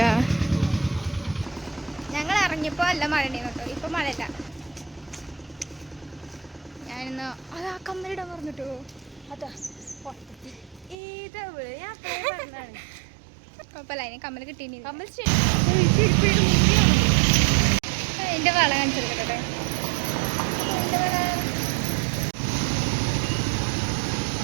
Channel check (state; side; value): drops out; left; at 11.0 s